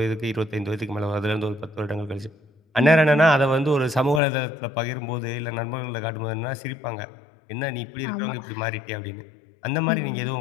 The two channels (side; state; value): right; drops out; at 4.2 s